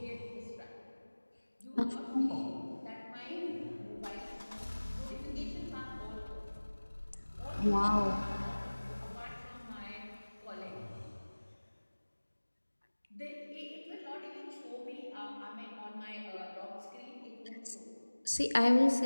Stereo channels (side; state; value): both; inverted; correlation -1.00